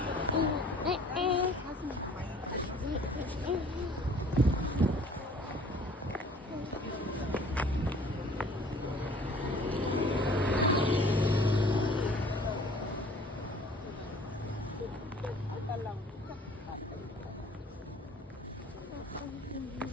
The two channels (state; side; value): normal; both; correlation 0.52